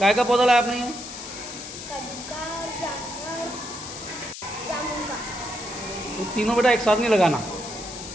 का पौधा लाया आपने ये? कद्दू का, जामुन का। तो तीनों बेटा एक साथ नहीं लगाना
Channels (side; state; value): left; noise; hiss, 10 dB below the sound